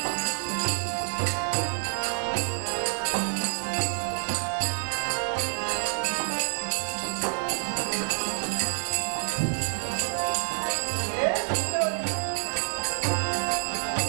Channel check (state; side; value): silent; left; digital silence